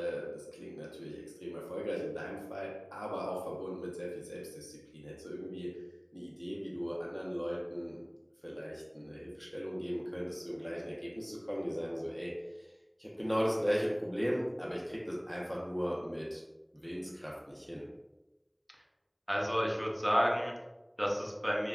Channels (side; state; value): both; identical; correlation 1.00